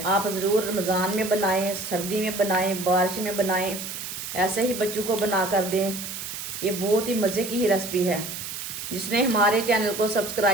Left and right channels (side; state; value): right; noise; hiss, 7 dB below the sound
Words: आप ज़रूर रमज़ान में बनाएं, सर्दी में बनाएं, बारिश में बनाएं, ऐसे ही बच्चों को बना कर दें। ये बहुत ही मज़े की ही रेसिपी है। जिसने हमारे चैनल को